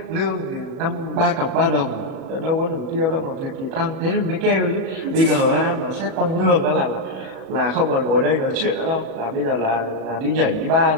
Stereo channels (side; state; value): left; late; 37 ms